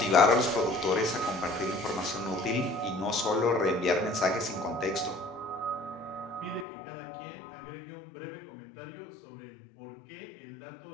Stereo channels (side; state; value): right; drops out; at 6.7 s